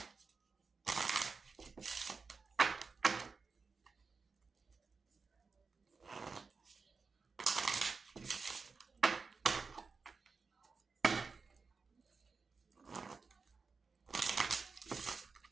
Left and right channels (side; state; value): left; quieter; 4.7 dB